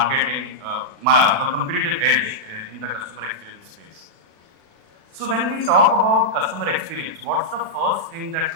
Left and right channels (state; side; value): late; left; 36 ms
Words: competitive edge in the customer experience space. So when we talk about customer experience, what's the first thing that